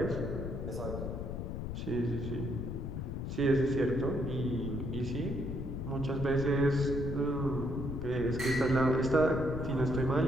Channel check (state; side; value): noise; left; rumble, 5 dB below the sound